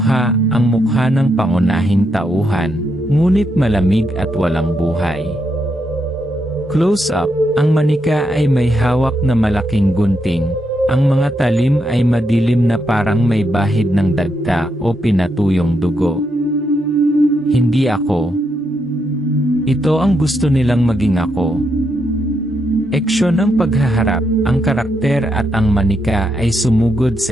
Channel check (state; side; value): normal; both; correlation 0.80